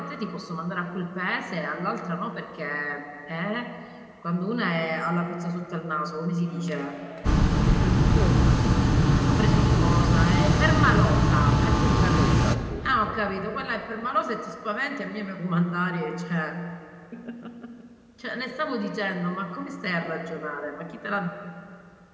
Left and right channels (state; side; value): identical; both; correlation 1.00